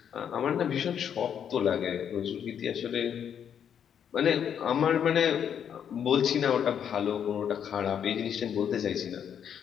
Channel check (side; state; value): right; quieter; 8.5 dB